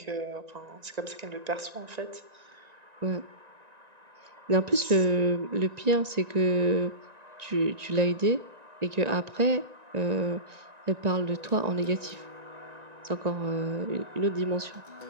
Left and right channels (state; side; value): late; left; 1.9 ms